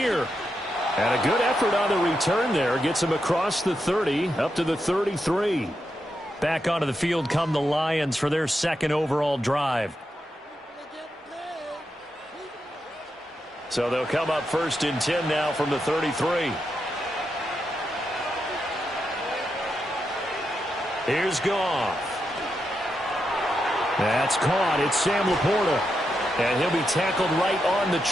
And a good effort on the return there. Gets him across the 30, up to the 33. Back onto the field come the Lions for their 2nd overall drive. So they'll come up 1st and 10 now from the 33. Here's Goff. That's caught. It's Sam Laporta. And he'll be tackled right on the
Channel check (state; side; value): normal; both; correlation 0.85